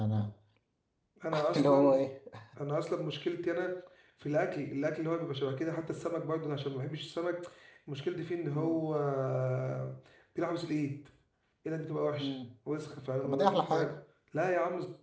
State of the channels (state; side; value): identical; both; correlation 1.00